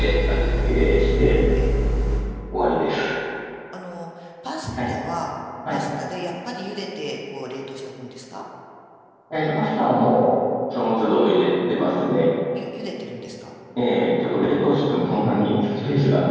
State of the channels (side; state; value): both; identical; correlation 1.00